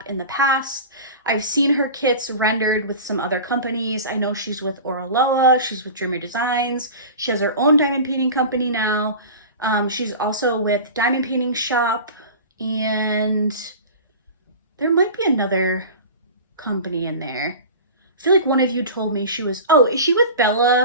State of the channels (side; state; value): both; inverted; correlation -0.34